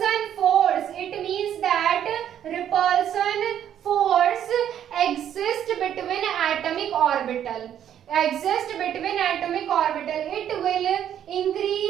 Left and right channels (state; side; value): quieter; left; 10.1 dB